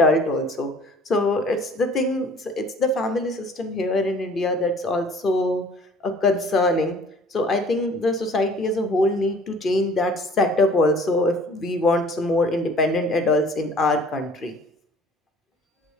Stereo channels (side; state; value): both; normal; correlation 0.51